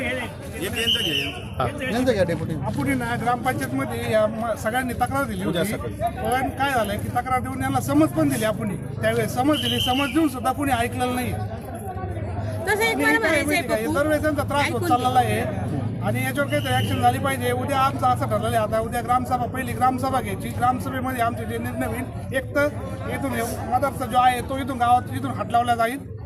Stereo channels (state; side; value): identical; both; correlation 1.00